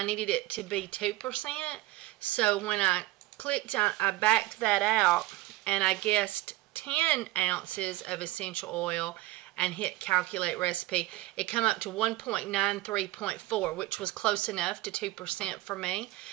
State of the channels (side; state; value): left; quieter; 18.0 dB